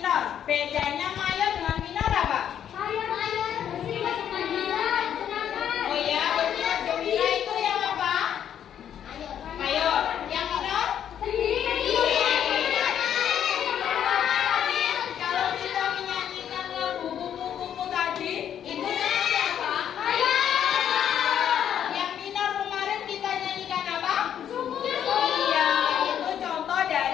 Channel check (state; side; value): quieter; right; 9.5 dB